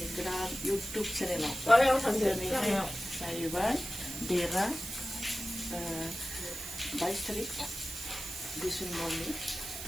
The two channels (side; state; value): right; noise; hiss, 8 dB below the sound